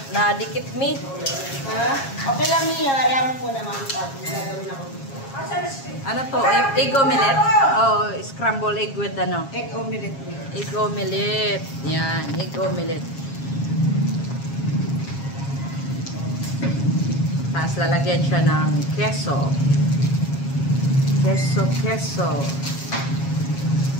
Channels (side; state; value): right; late; 7.3 ms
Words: nadikit me. Ha? Okay lang niya, ayaw mo naman pag gagawin ako. Ano to? Egg omelette? Oh, scramble egg with Egg omelette. Egg omelette. Yan, egg omelette. Tapos lalagyan siya ng queso. Queso.